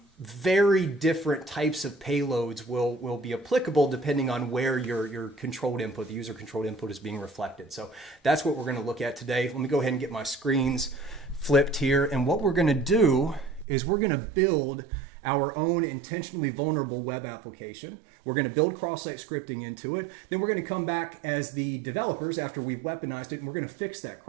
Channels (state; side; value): drops out; left; at 13.7 s